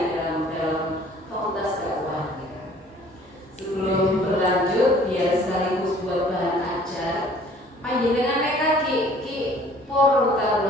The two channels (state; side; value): normal; both; correlation 0.54